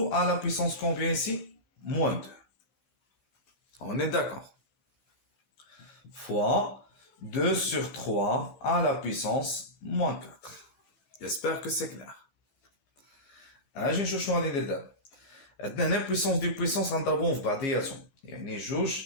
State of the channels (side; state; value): right; late; 16 ms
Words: à la puissance combien ici moins 2. On est d'accord. Fois 2 sur 3 à la puissance moins 4. J'espère que c'est clair. اجي نشوف شنو غادي ندير دابا. عندنا هنا بويسونس دي بويسونس غنضربوهم في بعضياتهم يعني 2